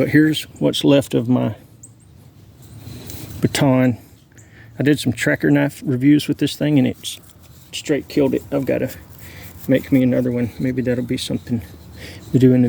here's what's left of my baton. I did some tracker knife reviews with this thing, and it's straight killed it. I've got to make me another one. Maybe that'll be something we do in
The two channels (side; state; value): both; identical; correlation 1.00